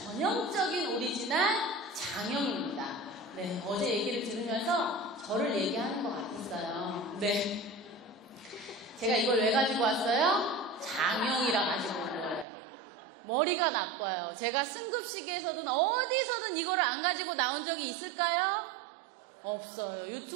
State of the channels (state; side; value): drops out; left; at 12.5 s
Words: 오리지널 장영입니다. 네, 어제 얘기를 들으면서 저를 얘기하는 것 같았어요. 네. 제가 이걸 왜 가지고 왔어요? 장영이라 가지고 온 거예요. 머리가 나빠요. 제가 승급시계에서든 어디서든 이거를 안 가지고 나온 적이 있을까요? 없어요.